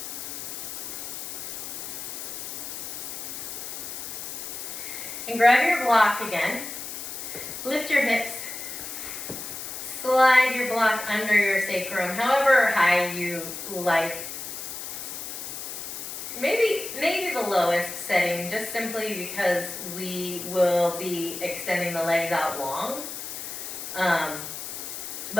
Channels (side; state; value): left; noise; hiss, 7 dB below the sound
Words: And grab your block again. Lift your hips. Slide your block under your sacrum, however high you like. Maybe the lowest setting, just simply because we will be extending the legs out long.